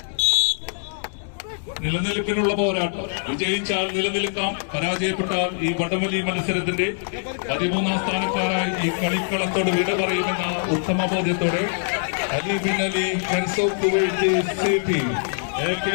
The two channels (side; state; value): right; silent; digital silence